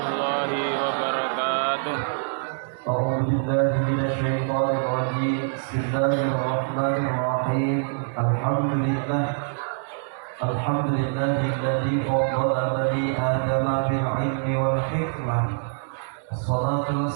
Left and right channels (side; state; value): left; silent; digital silence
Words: wabarakatuh. A'udzu billahi minasyaitonir rajim. Bismillahirrahmanirrahim. Alhamdulillahilladzi faddala bani adama bil ilmi wal hikmah. Wassalatu